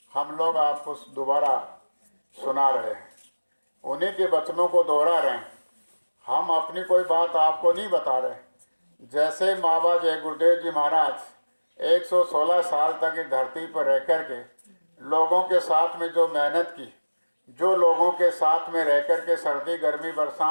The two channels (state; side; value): inverted; both; correlation -1.00